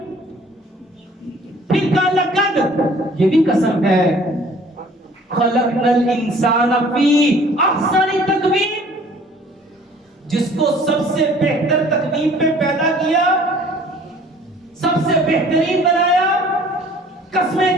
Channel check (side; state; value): both; normal; correlation 0.53